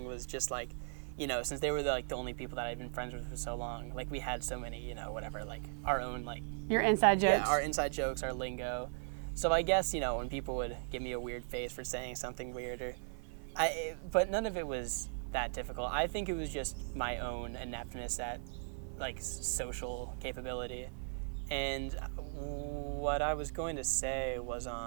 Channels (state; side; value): silent; left; digital silence